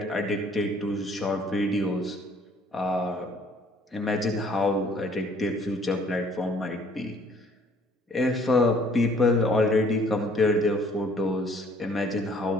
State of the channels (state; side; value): normal; both; correlation 0.59